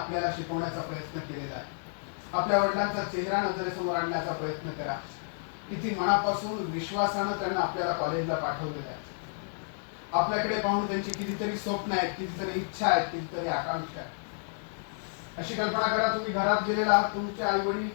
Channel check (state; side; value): silent; right; 57 dB below the other